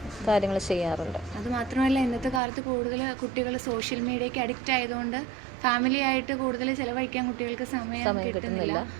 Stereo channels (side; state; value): left; drops out; at 2.4 s